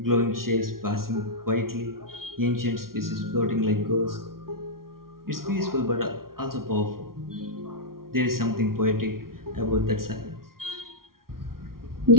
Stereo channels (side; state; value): left; late; 0.93 ms